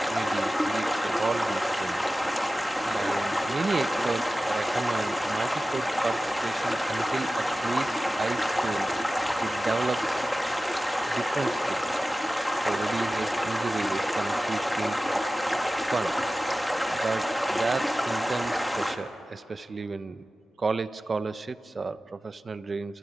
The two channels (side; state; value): both; normal; correlation 0.95